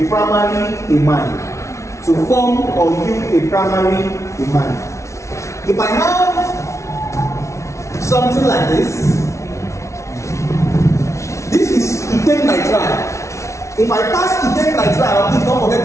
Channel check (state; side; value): late; right; 0.14 ms